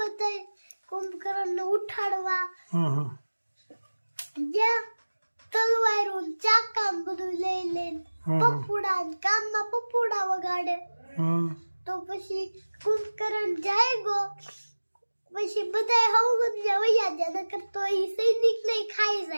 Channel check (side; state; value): both; inverted; correlation -1.00